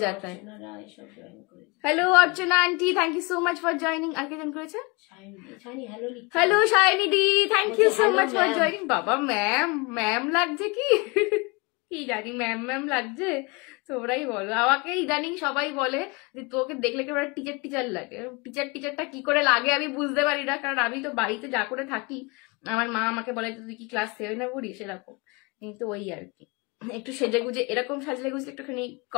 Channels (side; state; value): right; quieter; 27.3 dB